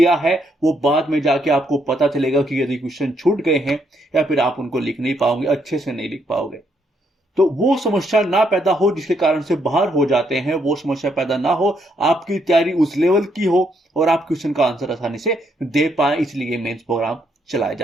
है वो बाद में जाके आपको पता चलेगा कि यदि क्वेश्चन छूट गए हैं या फिर आप उनको लिख नहीं पाओगे, अच्छे से नहीं लिख पाओगे। तो वो समस्या ना पैदा हो जिसके कारण से बाहर हो जाते हैं, वो समस्या पैदा ना हो, आपकी तैयारी उस लेवल की हो और आप क्वेश्चन का आंसर आसानी से दे पाए, इसलिए मेंस प्रोग्राम चलाया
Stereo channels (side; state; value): both; normal; correlation 0.74